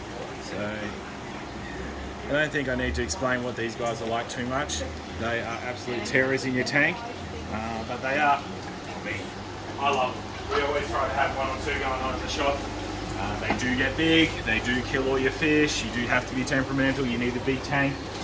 So, I don't think I need to explain what these guys are like too much. They are absolute terrors in your tank, but they are, I love them. we always try to have 1 or 2 going on in the shop. They do get big, they do kill all your fish, you do have to be temperamental, you need a big tank.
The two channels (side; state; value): both; identical; correlation 1.00